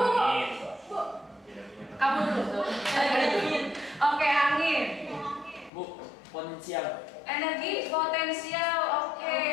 Kamu dulu. Oke, angin. Bu, potensial. Energi potensial. Oke,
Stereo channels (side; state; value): right; drops out; at 5.7 s